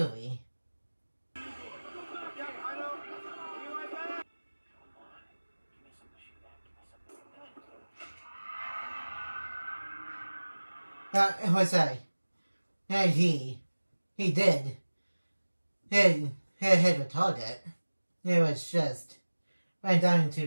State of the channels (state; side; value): inverted; both; correlation -1.00